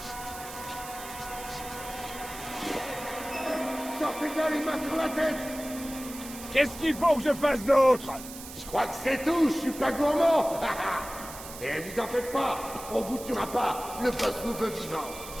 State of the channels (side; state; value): right; noise; hiss, 13 dB below the sound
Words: Sortez bien les mains sur la tête! Qu'est-ce qu'il faut que je fasse d'autre? Je crois que c'est tout, je suis pas gourmand! Et vous en faites pas, on vous tuera pas, le boss nous veut vivants.